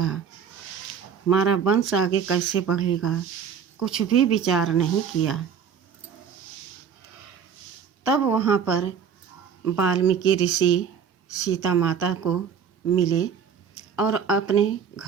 हमारा वंश आगे कैसे बढ़ेगा। कुछ भी विचार नहीं किया। तब वहाँ पर वाल्मीकि ऋषि सीता माता को मिले और अपने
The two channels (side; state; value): left; quieter; 7.3 dB